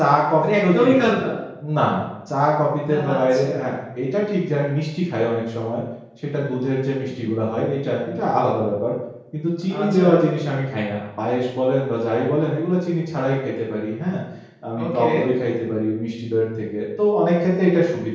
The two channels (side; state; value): both; identical; correlation 1.00